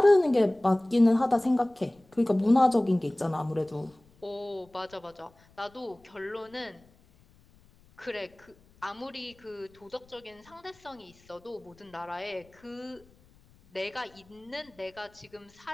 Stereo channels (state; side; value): noise; left; rumble, 29 dB below the sound